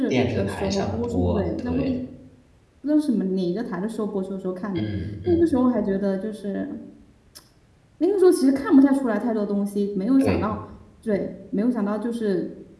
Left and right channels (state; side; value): identical; both; correlation 1.00